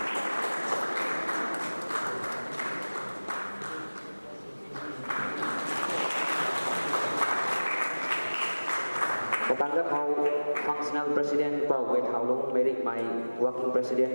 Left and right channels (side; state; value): both; inverted; correlation -1.00